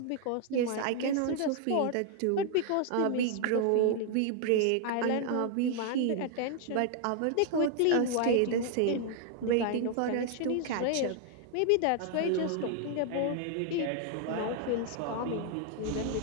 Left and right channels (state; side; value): different; both; correlation 0.00